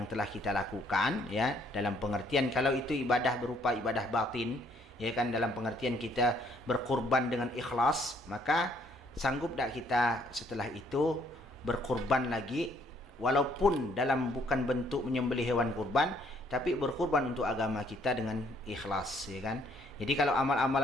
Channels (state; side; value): normal; both; correlation 0.65